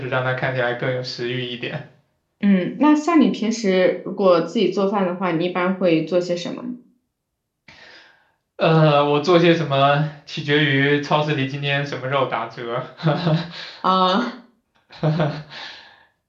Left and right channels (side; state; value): both; identical; correlation 1.00